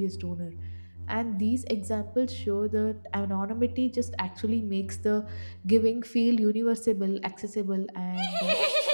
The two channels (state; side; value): inverted; both; correlation -1.00